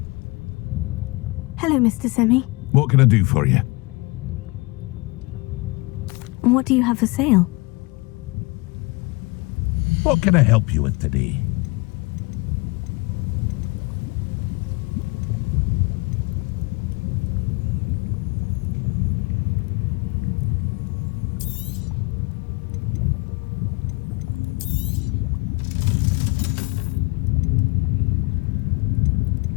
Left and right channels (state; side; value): quieter; right; 26.2 dB